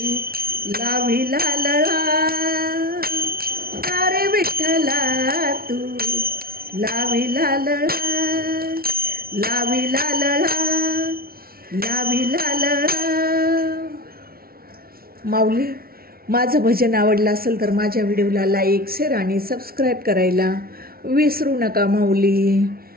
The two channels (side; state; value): left; late; 0.44 ms